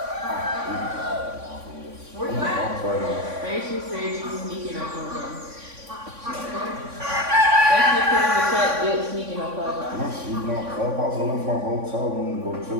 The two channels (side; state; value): left; late; 3.5 ms